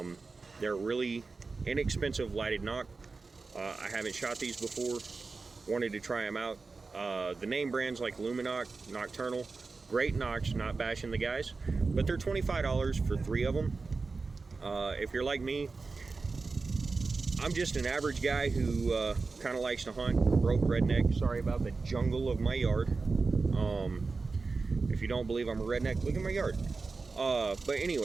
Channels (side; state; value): left; quieter; 4.1 dB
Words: They're really inexpensive lighted knock. I haven't shot these before. Wanted to try them out. The name brands like Luminoc, Nocturnal, great knocks, not bashing the guys, but they're $25 for 3 of them. If you're like me, I'm just an average guy who kind of likes to hunt, broke redneck. Sorry about the jungle of my yard. If you don't believe I'm a redneck, look at my yard. But